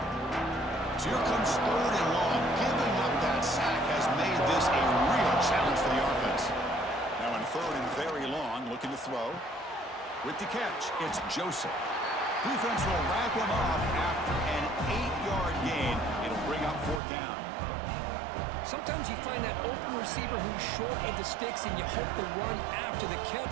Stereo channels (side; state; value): left; drops out; at 17.0 s